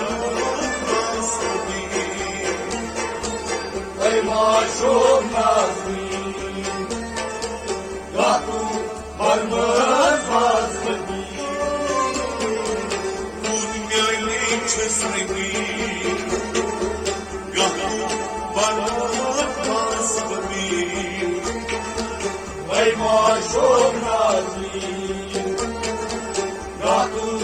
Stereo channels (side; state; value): both; identical; correlation 1.00